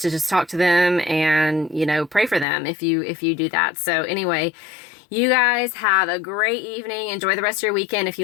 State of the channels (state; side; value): drops out; right; at 2.5 s